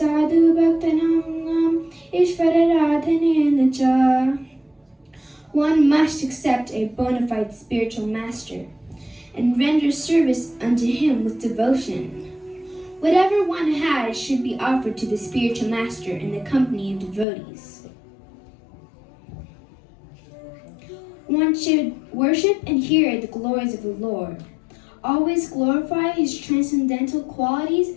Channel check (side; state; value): right; drops out; at 17.2 s